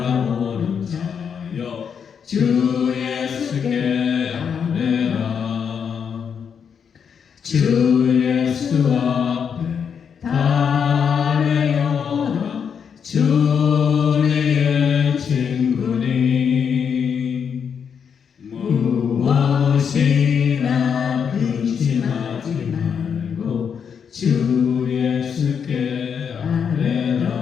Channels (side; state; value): right; quieter; 7.1 dB